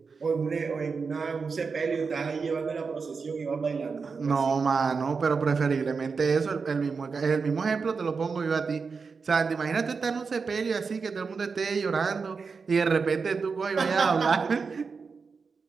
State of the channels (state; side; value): quieter; left; 5.0 dB